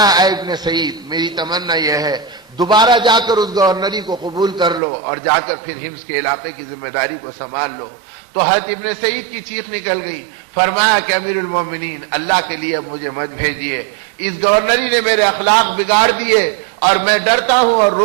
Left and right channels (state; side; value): drops out; left; at 4.8 s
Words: اے ابن سعید، میری تمنا یہ ہے دوبارہ جا کر اس گورنری کو قبول کر لو اور جا کر پھر حمص کے علاقے کی ذمہ داری کو سنبھال لو۔ تو حضرت ابن سعید کی چیخ نکل گئی، فرمایا کہ امیر المومنین اللہ کے لیے اب مجھے مت بھیجیے، اس گورنری نے میرے اخلاق بگاڑ دیے اور میں ڈرتا ہوں اور